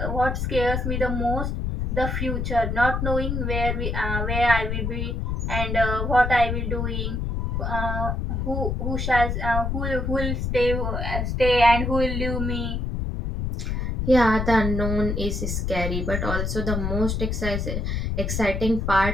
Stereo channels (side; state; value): left; noise; rumble, 1 dB below the sound